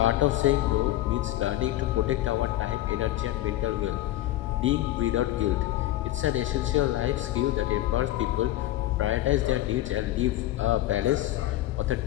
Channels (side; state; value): right; quieter; 14.7 dB